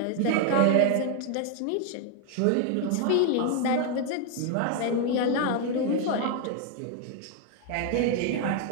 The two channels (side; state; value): both; different; correlation 0.00